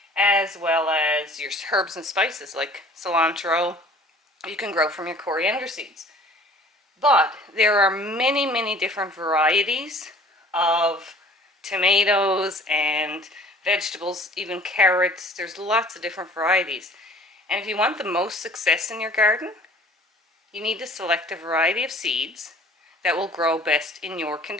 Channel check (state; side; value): normal; both; correlation 0.49